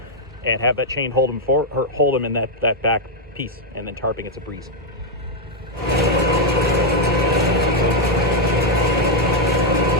have that chain hold them in that back piece, and then tarping it's a breeze.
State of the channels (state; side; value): normal; both; correlation -0.01